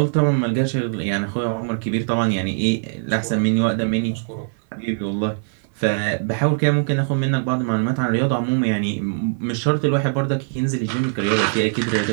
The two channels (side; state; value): left; silent; 60 dB below the other